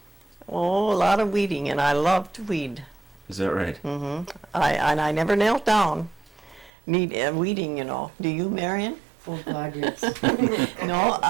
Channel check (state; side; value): drops out; left; at 6.7 s